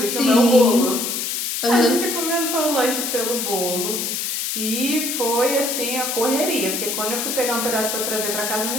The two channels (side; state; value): left; noise; hiss, 2 dB below the sound